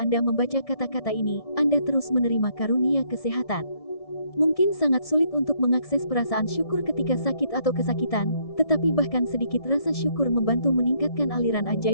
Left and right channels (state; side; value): late; right; 1.6 ms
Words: membaca kata-kata ini, Anda terus menerima karunia kesehatan. Mungkin sangat sulit untuk mengakses perasaan syukur ketika sakit atau kesakitan, tetapi bahkan sedikit rasa syukur membantu meningkatkan aliran